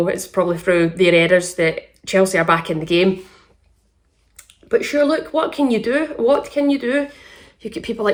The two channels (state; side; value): identical; both; correlation 1.00